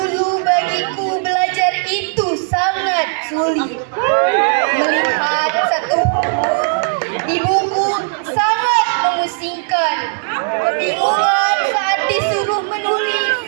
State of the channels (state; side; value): silent; left; 68 dB below the other